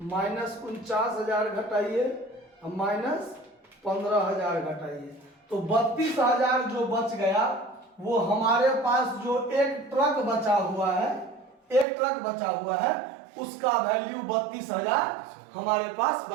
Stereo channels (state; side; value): drops out; left; at 11.9 s